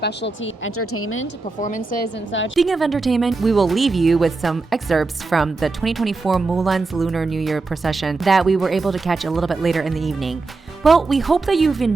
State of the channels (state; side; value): quieter; left; 3.8 dB